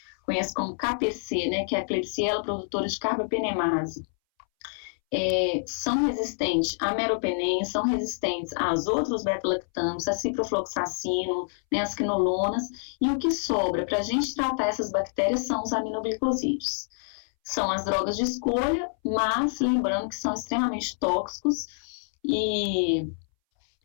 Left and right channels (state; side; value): silent; right; 60 dB below the other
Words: conhece como KPC, né, que é a Klebsiella produtora de carbapenemase, são resistentes a meropenem, são resistentes aos outros beta-lactâmicos, a ciprofloxacino, né, as quinolonas, e o que sobra para a gente tratar essas bactérias são os aminoglicosídeos. São as drogas de escolha, mas lembrando que são extremamente tóxicos e